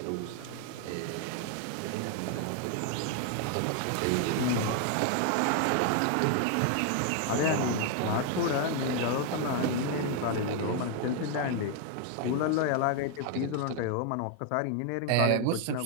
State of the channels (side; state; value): both; different; correlation 0.00